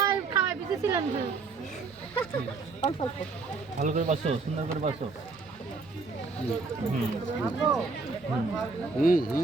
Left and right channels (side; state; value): left; quieter; 4.2 dB